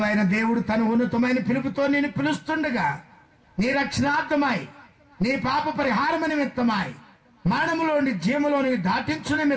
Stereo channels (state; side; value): identical; both; correlation 1.00